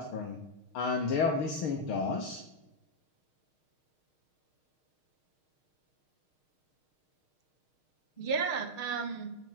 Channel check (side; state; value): right; late; 6.4 ms